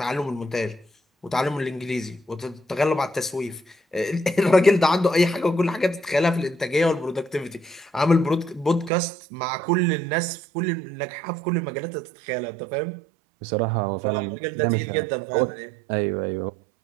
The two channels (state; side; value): drops out; left; at 8.9 s